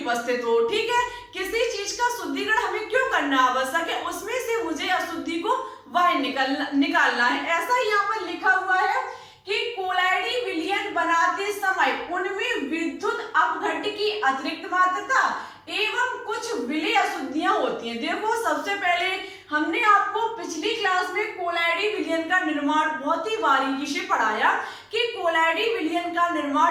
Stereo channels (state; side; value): identical; both; correlation 1.00